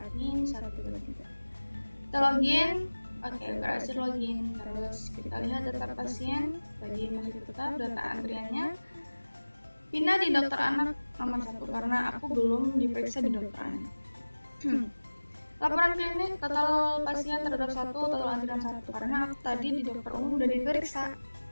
123. Kita login. Oke, berhasil login. Terus kita lihat data pasien. Tadi masih tetap data antriannya. Pindah di dokter anak nomor 1 karena aku belum diperiksa di dokter anak. Laporan klinik, total pasien terhadap 1, total antrian 1 karena aku tadi di dokter umum udah diperiksa.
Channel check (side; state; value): both; inverted; correlation -1.00